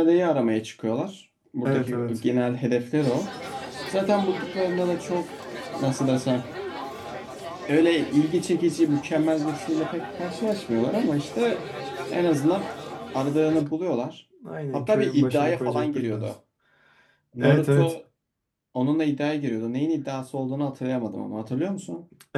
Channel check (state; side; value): identical; both; correlation 1.00